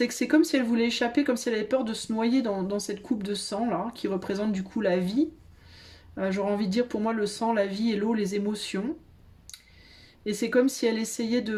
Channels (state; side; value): identical; both; correlation 1.00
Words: que c'est comme si elle voulait échapper, comme si elle avait peur de se noyer dans cette coupe de sang, là, qui représente du coup la vie. J'aurais envie de dire, pour moi, le sang, la vie et l'eau, les émotions. Et c'est comme si elle essayait